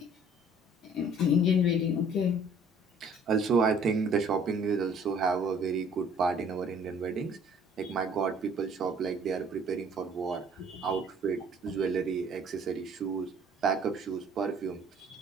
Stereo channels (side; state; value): both; normal; correlation 0.55